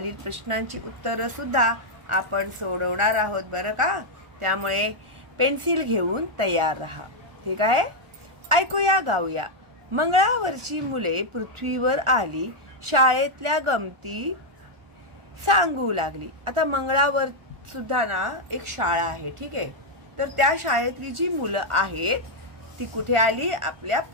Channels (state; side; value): late; left; 1.4 ms